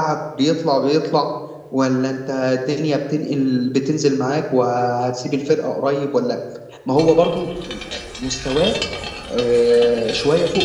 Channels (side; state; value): both; identical; correlation 1.00